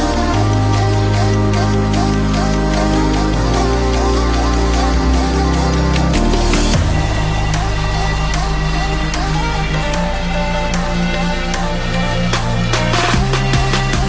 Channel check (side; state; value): both; identical; correlation 1.00